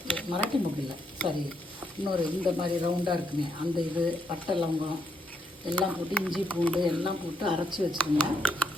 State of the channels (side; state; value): both; normal; correlation 0.76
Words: இல்லை சாரி, இன்னொரு இந்த மாதிரி ரவுண்டாக இருக்குங்க அந்த இது, பட்டை லவங்கம் எல்லாம் போட்டு, இஞ்சி பூண்டு எல்லாம் போட்டு அரைச்சி வச்சுருங்க.